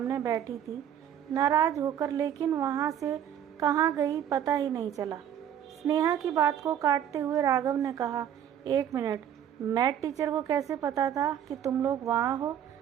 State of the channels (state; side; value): quieter; left; 9.7 dB